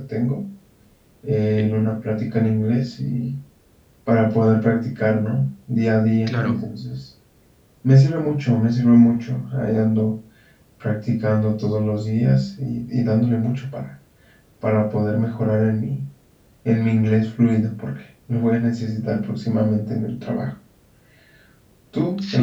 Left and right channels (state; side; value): identical; both; correlation 1.00